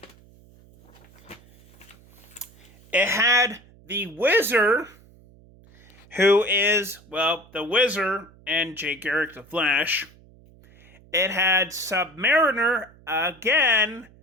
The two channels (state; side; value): noise; right; hum, 26 dB below the sound